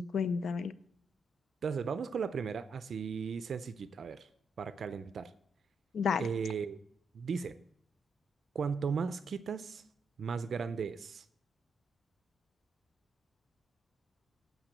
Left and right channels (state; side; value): normal; both; correlation 0.78